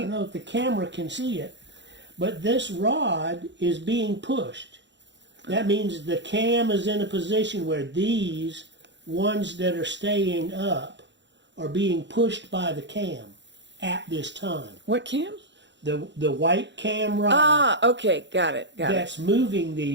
know if the camera can see it, but this rod is being pushed. That means the cam is in a position where these ones that are staying up are being pushed by the cam at this time. What cam? The white cam rod. Ah, okay, got it. That's moving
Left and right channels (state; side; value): late; left; 0.52 ms